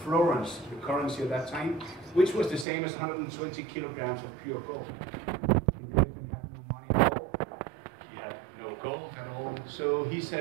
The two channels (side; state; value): left; drops out; at 2.7 s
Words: florins, the currency at that time, which was the same as 120 kilograms of pure gold. He had no money at all. He had no gold at all. So he